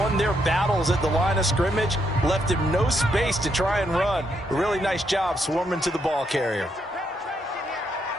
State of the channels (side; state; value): both; normal; correlation 0.77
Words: their battles at the line of scrimmage, left him no space to try and run. A really nice job swarming to the ball carrier.